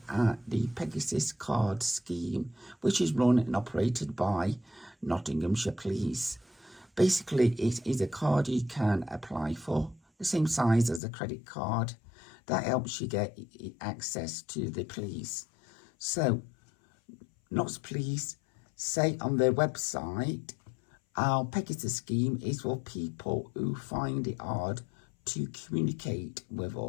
at the Pegasus Card scheme, which is run and operated by Nottinghamshire Police. Basically, it is a card you can apply for, the same size as a credit card, that helps you get access to the police. So, Notts Police say on their website, our Pegasus scheme is for people who find it hard to communicate with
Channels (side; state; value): right; drops out; at 11.0 s